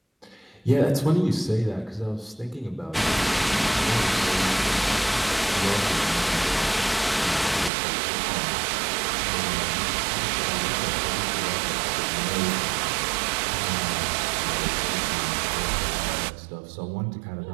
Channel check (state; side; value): drops out; left; at 7.7 s